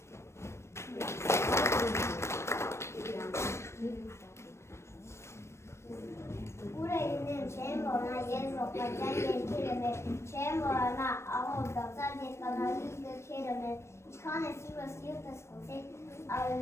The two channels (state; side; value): late; right; 0.13 ms